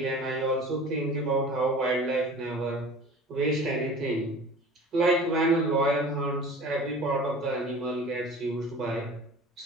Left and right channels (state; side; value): normal; both; correlation 0.41